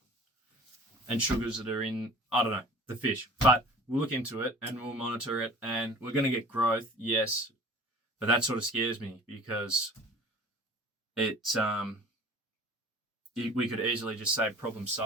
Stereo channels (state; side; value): normal; both; correlation 0.44